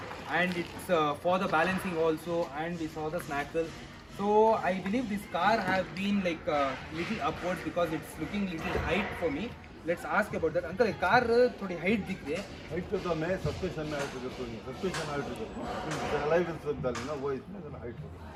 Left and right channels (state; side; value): identical; both; correlation 1.00